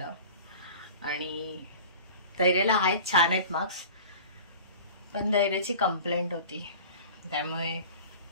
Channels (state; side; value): inverted; both; correlation -0.40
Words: आणि धैर्याला आहेत, छान आहेत मार्क्स, पण धैर्याची कंप्लेंट होती, त्यामुळे